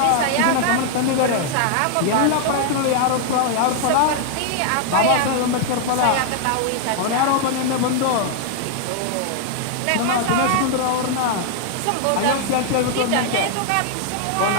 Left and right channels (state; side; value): different; both; correlation 0.00